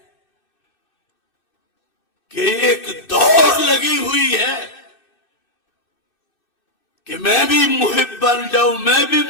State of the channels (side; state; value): right; late; 2.6 ms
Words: کہ ایک دوڑ لگی ہوئی ہے کہ میں بھی محب بن جاؤں، میں بھی